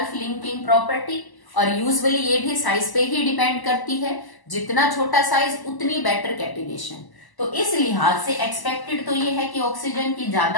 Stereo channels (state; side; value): late; right; 1.0 ms